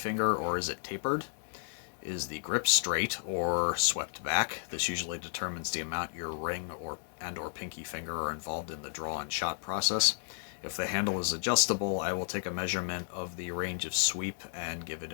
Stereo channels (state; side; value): silent; right; digital silence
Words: or is it tapered? Is the grip straight or swept back? This usually determines the amount your ring or pinky finger are involved in the draw and shot process. If the handle is adjustable, I will take a measurement of the range of sweep and give it